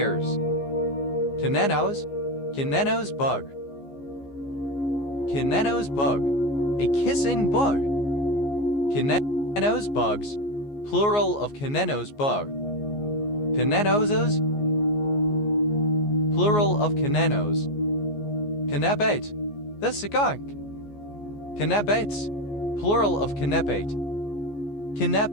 Canenos, Canenos bug. Canenos bug, a kissing bug. Canenos bugs, plural of Canenos bug. Canenosos, plural of Canenos. Canabate, the skunk. Canabates, plural of canabate.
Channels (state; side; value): late; right; 14 ms